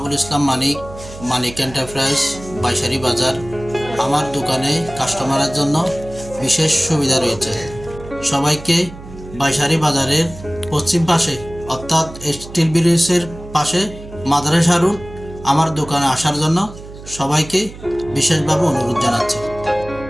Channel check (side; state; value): right; noise; hum, 15 dB below the sound